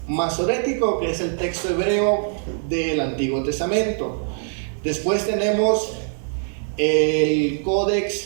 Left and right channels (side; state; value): left; silent; digital silence